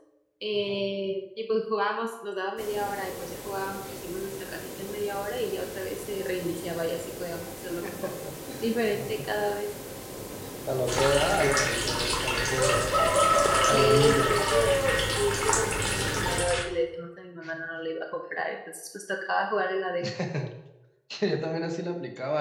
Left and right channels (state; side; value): identical; both; correlation 1.00